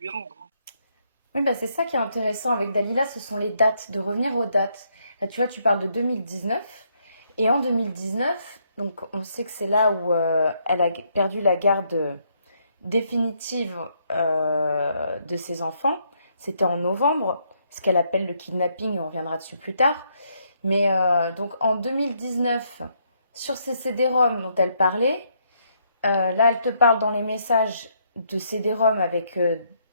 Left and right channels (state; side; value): inverted; both; correlation -0.73